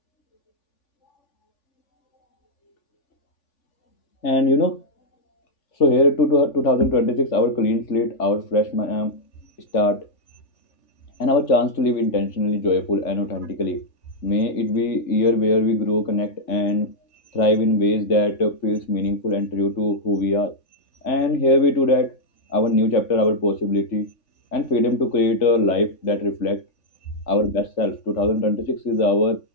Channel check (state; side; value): late; right; 3.4 ms